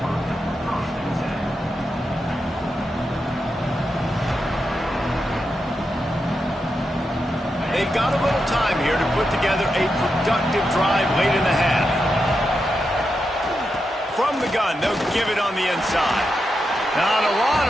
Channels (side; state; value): both; normal; correlation 0.87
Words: they've got a little time here to put together a productive drive late in the half. From the gun, they'll give it on the inside. Not a lot